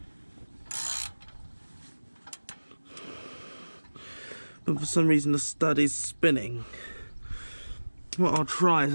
but for some reason the stud is spinning. What I'll try is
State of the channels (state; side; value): inverted; both; correlation -1.00